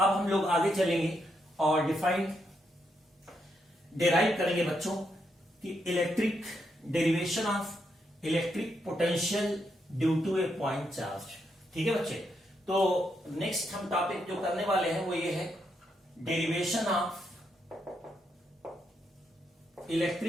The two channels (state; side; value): normal; both; correlation 0.80